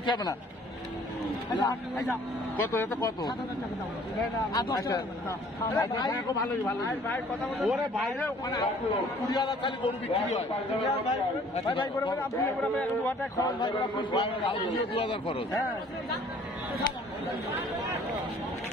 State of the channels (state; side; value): normal; both; correlation 0.55